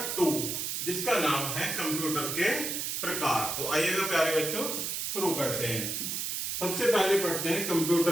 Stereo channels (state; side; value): noise; right; hiss, 2 dB below the sound